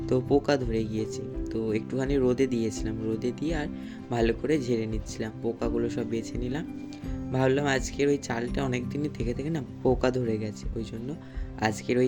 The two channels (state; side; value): identical; both; correlation 1.00